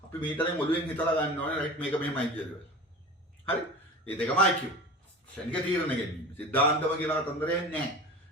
අපි මීටරෙන් ඔළුවෙන් හිතලා ගන්න ඕනේ රයිට් මේක මෙහෙමයි කියලා. හරි? මේ දෙකම IQ. ශනික තීරණ ගැනීම. සිද්ධාන්තව කියලා කතන්දරයක් නැහැ.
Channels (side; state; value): both; normal; correlation 0.35